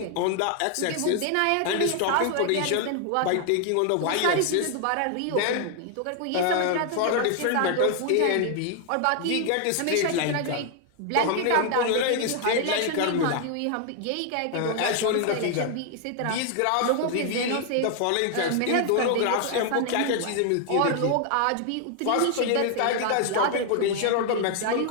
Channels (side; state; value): both; different; correlation 0.00